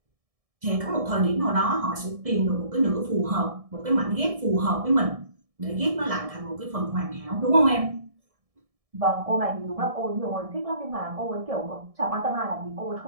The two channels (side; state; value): left; late; 1.6 ms